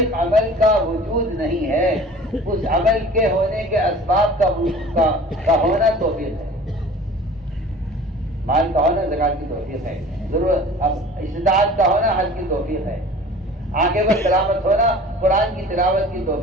عمل کا وجود نہیں ہے, اس عمل کے ہونے کے اسباب کا ہونا توفیق ہے. مال کا ہونا زکات کی توفیق ہے, ضرورت استطاعت کا ہونا حج کی توفیق ہے, آنکھیں پر تلاوت ہونا قرآن کی تلاوت کی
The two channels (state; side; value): normal; both; correlation 0.43